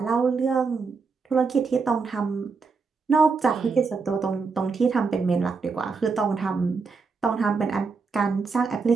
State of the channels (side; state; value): left; quieter; 4.7 dB